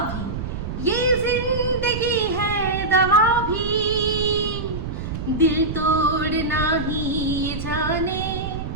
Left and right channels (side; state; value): right; noise; rumble, 6 dB below the sound